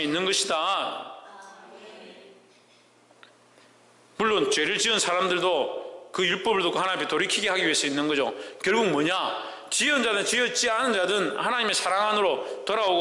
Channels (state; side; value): identical; both; correlation 1.00